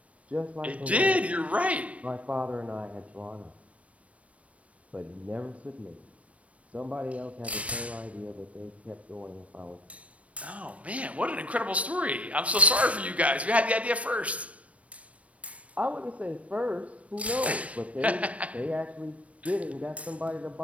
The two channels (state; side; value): late; left; 0.065 ms